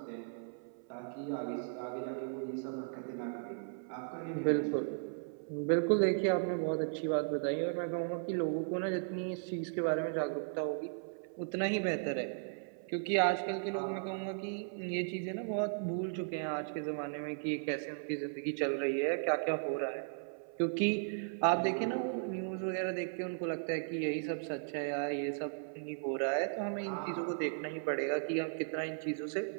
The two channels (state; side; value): silent; left; 54 dB below the other